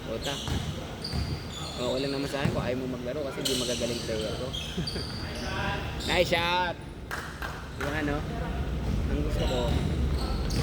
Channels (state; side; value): identical; both; correlation 1.00